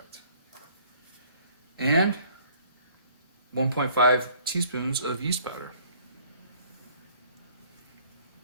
And 1.5 teaspoons of yeast powder.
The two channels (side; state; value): both; inverted; correlation -0.58